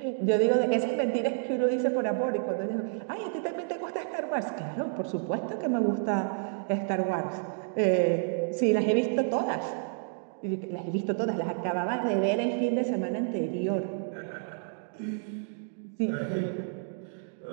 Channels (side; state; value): left; silent; digital silence